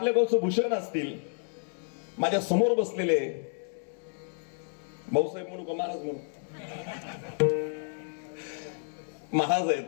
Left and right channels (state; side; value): silent; right; 58 dB below the other